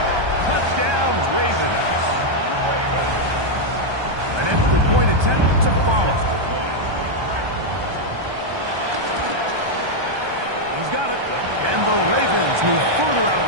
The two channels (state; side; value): late; left; 1.2 ms